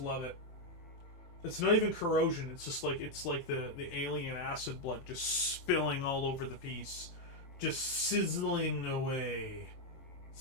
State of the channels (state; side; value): late; right; 23 ms